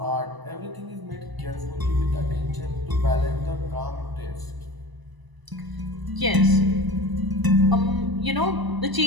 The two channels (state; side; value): late; left; 1.0 ms